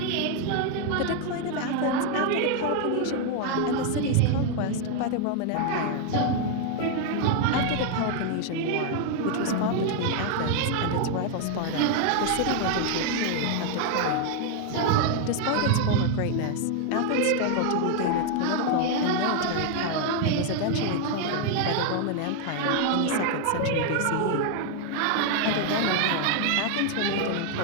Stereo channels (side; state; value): both; different; correlation 0.00